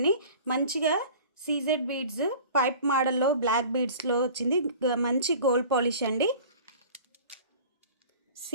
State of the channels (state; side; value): inverted; both; correlation -0.43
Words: మంచిగా సీజెడ్ బీడ్స్ పైప్ మోడల్లో బ్లాక్ బీడ్స్లో వచ్చింది. మంచి గోల్డ్ పాలిష్ అండి.